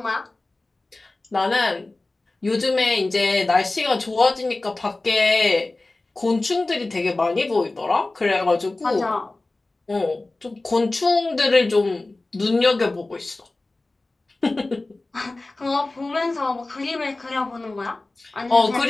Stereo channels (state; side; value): quieter; right; 3.1 dB